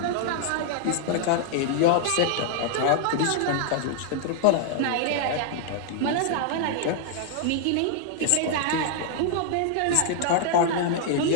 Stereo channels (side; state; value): both; different; correlation 0.00